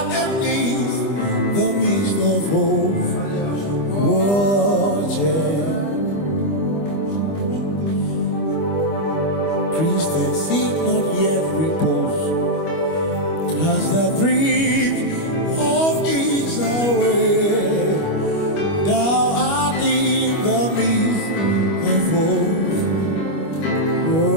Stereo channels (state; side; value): late; right; 25 ms